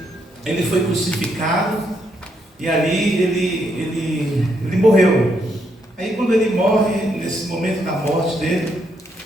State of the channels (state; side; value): normal; both; correlation 0.76